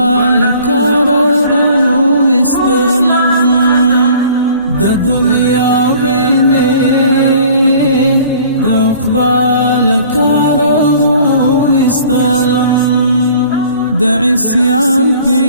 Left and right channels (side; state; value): both; inverted; correlation -0.51